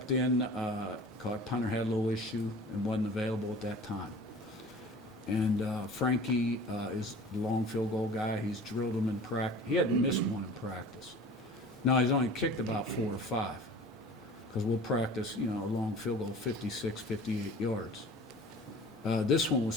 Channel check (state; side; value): normal; both; correlation 0.42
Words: in, punter had a little issue and wasn't available at that time. And Frankie is the long field goal guy. He's drilled them in practice. He hadn't missed one in practice. Now, he's only kicked about 4 or 5 because we'll practice, a long field goal, 56, 58 yards. This one